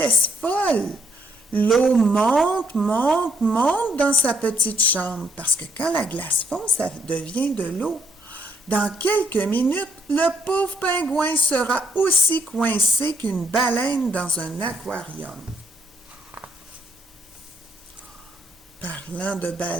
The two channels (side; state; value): both; normal; correlation 0.72